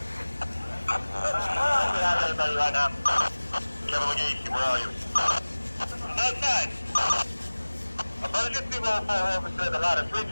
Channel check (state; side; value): inverted; both; correlation -1.00